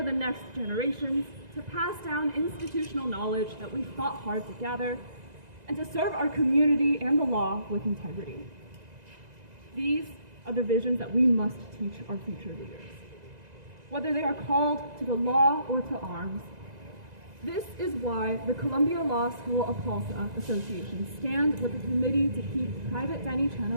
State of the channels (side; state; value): left; late; 2.0 ms